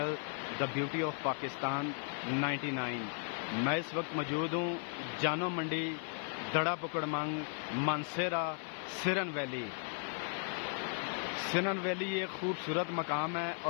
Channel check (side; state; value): right; silent; 54 dB below the other